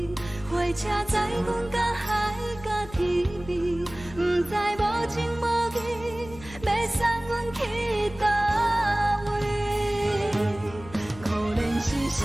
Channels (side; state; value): left; noise; hum, 17 dB below the sound